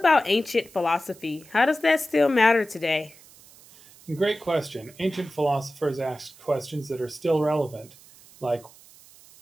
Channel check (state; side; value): noise; right; hiss, 23 dB below the sound